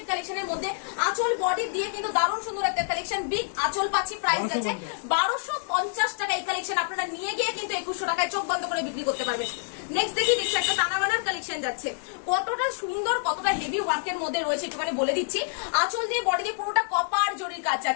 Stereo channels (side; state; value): right; silent; digital silence